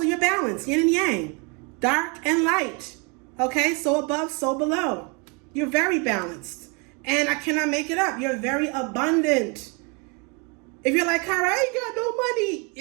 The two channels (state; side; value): quieter; left; 32.4 dB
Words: your balance, yin and yang, dark and light. Okay, so above, so below. You're very balanced. And I cannot make it up. You're very abundant. If you're like, Kyra, I ain't got no money,